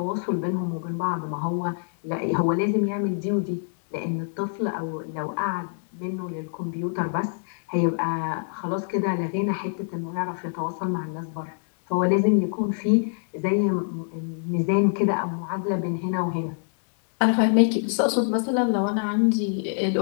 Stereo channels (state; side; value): silent; right; digital silence